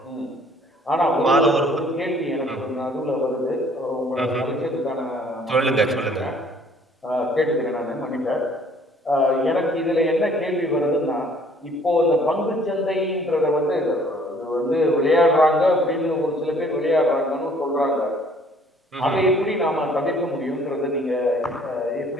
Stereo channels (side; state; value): both; normal; correlation 0.58